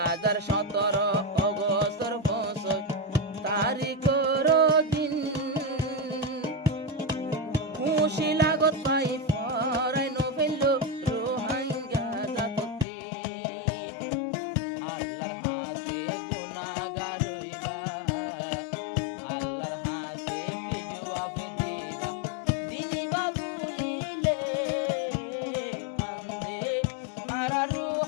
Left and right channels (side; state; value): right; drops out; at 12.9 s